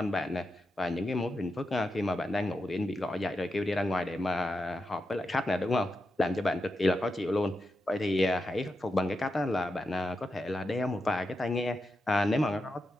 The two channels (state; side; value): normal; both; correlation 0.88